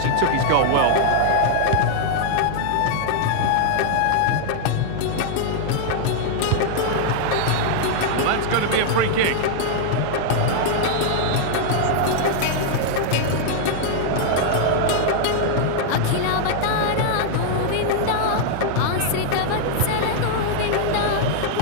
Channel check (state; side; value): different; both; correlation 0.00